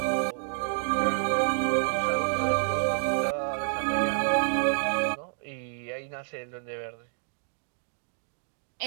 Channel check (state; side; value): silent; left; digital silence